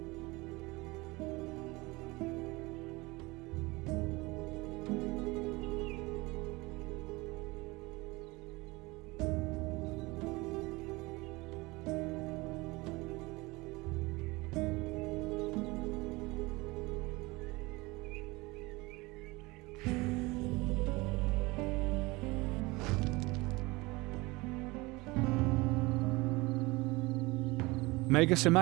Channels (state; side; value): quieter; left; 23.0 dB